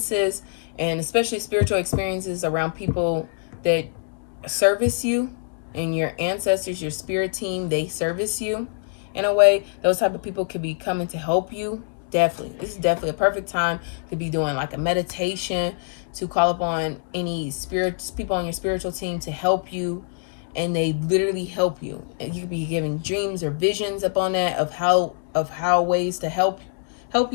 and especially spiritual experiences around people that service you, and your ancestors, your spirit team, they service you in a way. Those type of people could be coming to help you. Definitely, this is definitely a perfect time to be doing like a meditation, to call upon any people on your spiritual team to help you, and they literally help you. And you could be giving dreams or visions upon that of how ways to help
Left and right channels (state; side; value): silent; right; digital silence